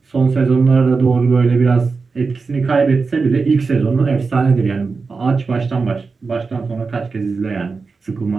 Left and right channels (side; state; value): left; quieter; 4.5 dB